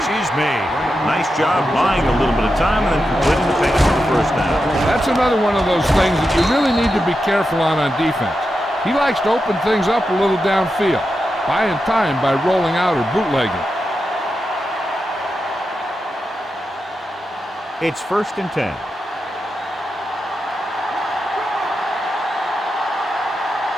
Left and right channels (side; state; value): both; normal; correlation 0.89